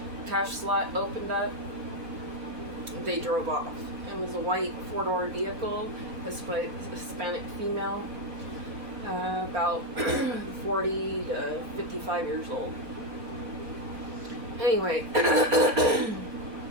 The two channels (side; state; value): left; late; 4.0 ms